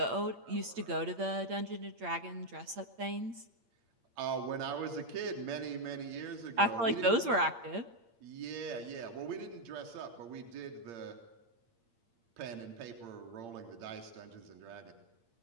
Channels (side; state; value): left; late; 8.7 ms